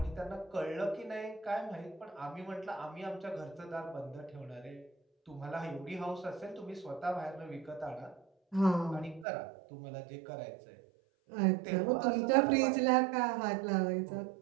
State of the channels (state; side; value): drops out; left; at 9.2 s